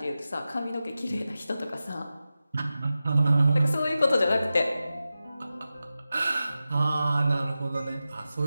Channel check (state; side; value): inverted; both; correlation -0.93